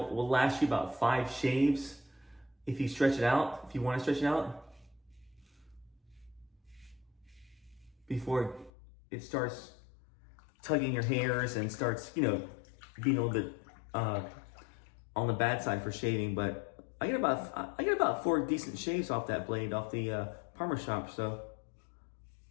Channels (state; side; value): drops out; right; at 8.7 s